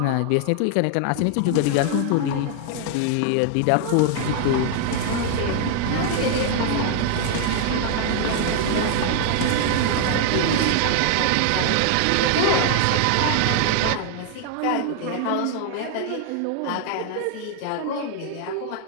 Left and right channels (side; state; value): both; different; correlation 0.00